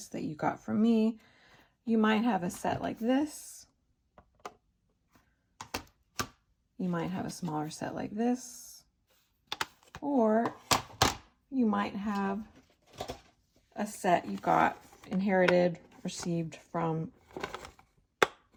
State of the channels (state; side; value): identical; both; correlation 1.00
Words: that you got from me. You might have a set like this. You might have a smaller set like this. Or you might have a set you got inherited, received from